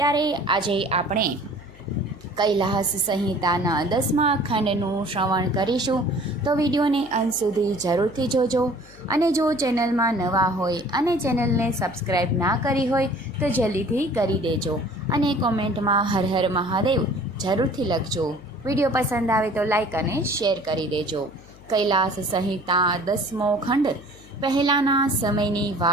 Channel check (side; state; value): left; noise; hum, 23 dB below the sound